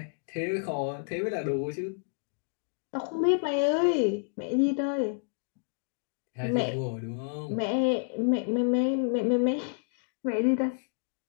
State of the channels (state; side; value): silent; right; digital silence